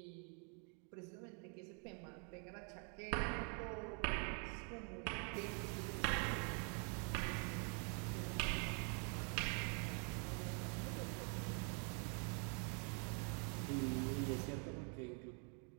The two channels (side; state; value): left; quieter; 39.4 dB